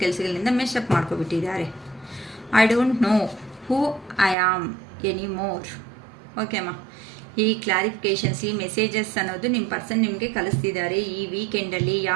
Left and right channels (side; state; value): left; drops out; at 4.4 s